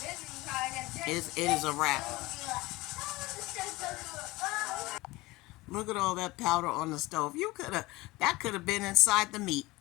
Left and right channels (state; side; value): quieter; right; 20.8 dB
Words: It is a wrap. Look at all that powder on the stove. That could have been inside the meat.